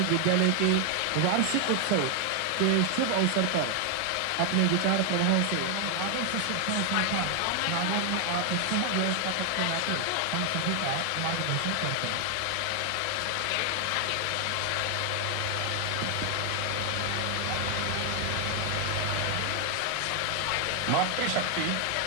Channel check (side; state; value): both; different; correlation 0.00